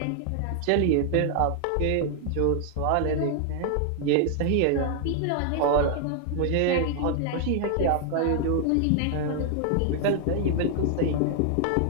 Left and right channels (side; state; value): both; different; correlation 0.00